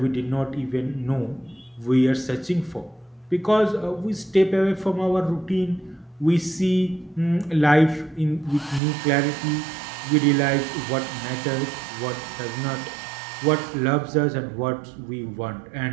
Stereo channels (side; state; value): left; drops out; at 8.8 s